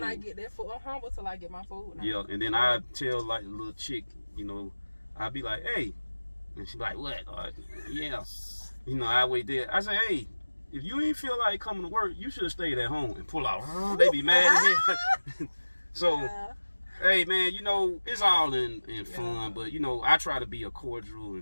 I get that food. I'm humble till I get my food. Yeah, and then I tell like the little chick, I be like, hey, and she be like, what? Yeah. I wait there. I say, hey, if you ain't feel like coming to work, you should have stayed at home and pull out. They be mad at me. So, Yeah. hey, man, you know, it's all in fun, but, you know, I try to be a cordial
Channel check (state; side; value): inverted; both; correlation -1.00